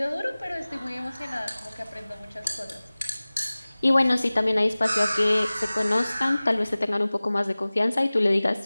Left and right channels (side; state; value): both; inverted; correlation -0.99